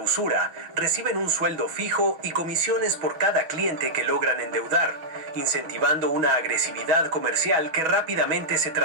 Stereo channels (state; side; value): late; left; 6.1 ms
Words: reciben un sueldo fijo y comisiones por cada cliente que logran endeudar, incentivando una agresividad comercial que rápidamente se